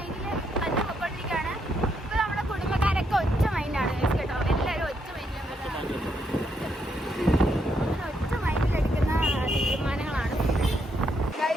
തന്നെ പൊക്കോണ്ടിരിക്കുകയാണ്. ഇപ്പൊ നമ്മുടെ കുടുംബക്കാരൊക്കെ ഒറ്റ മൈൻഡാണ് കേട്ടോ. എല്ലാവരും ഒറ്റ മൈൻഡിലെടുക്കുന്ന തീരുമാനങ്ങളാണ്.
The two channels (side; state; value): both; normal; correlation 0.77